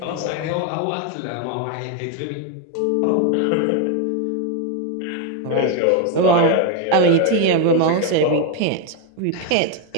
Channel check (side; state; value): both; different; correlation 0.01